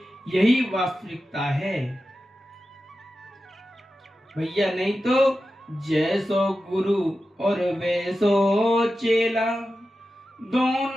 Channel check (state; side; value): normal; both; correlation 0.92